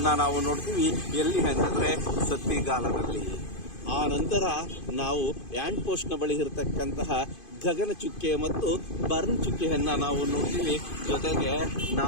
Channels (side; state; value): right; late; 2.5 ms